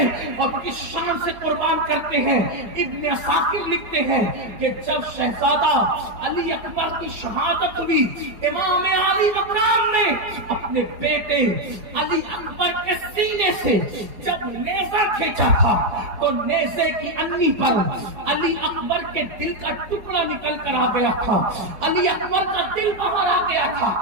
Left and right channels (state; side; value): late; left; 4.8 ms